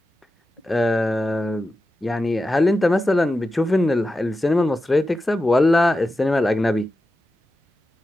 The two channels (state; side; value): normal; both; correlation 0.92